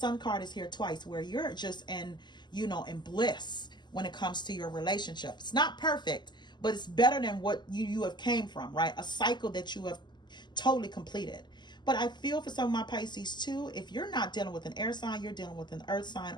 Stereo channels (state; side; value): late; right; 0.21 ms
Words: card is here twice, where you're just in bliss when it comes to your relationship. It's not perfect, but it's better than what you have came from, right? A cycle that you have totally completed. But I feel for some of my Pisces too, if you're not dealing with an air sign, you're dealing with an earth sign